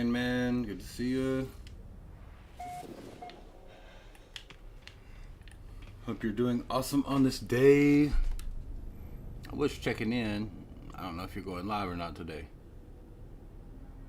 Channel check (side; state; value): both; identical; correlation 1.00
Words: man. Good to see you. Hope you're doing awesome on this day. I was checking in. I don't know if you're going live or not today.